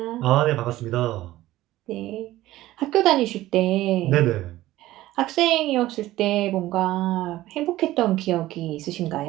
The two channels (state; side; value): quieter; left; 15.9 dB